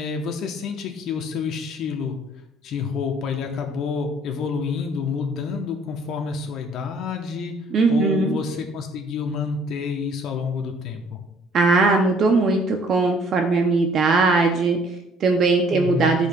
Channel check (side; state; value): both; normal; correlation 0.59